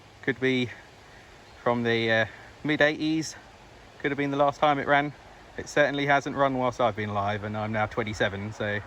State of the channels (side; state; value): both; identical; correlation 1.00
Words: Could be from the mid-80s, could have been the last time it ran. It certainly hasn't run whilst I've been alive, and I'm now 27, so